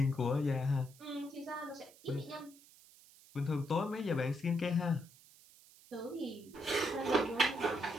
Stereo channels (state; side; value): noise; right; hiss, 24 dB below the sound